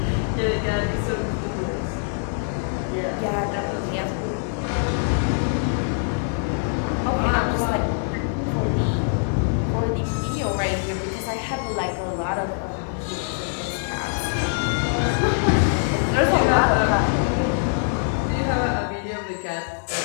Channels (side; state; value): right; silent; 63 dB below the other